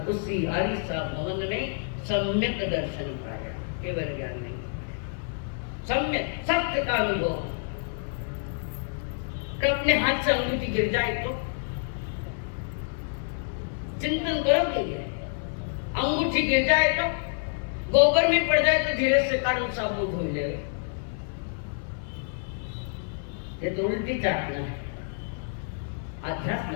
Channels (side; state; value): right; silent; 59 dB below the other